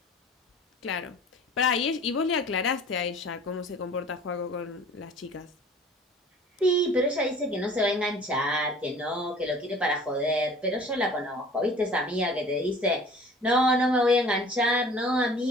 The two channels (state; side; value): normal; both; correlation 0.47